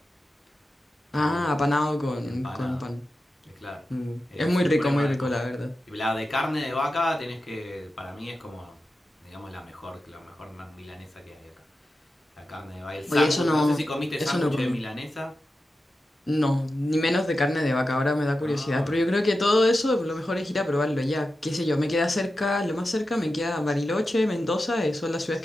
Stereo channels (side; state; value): both; normal; correlation 0.92